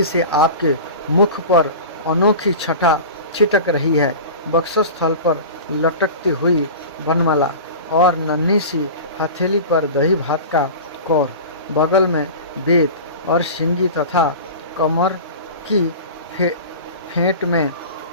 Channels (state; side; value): inverted; both; correlation -0.34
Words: से आपके मुख पर अनोखी छटा छिटक रही है। वक्षस्थल पर लटकती हुई वनमाला और नन्ही सी हथेली पर दही भात का कौर, बगल में वेद और सिंगी तथा कमर की फेंट में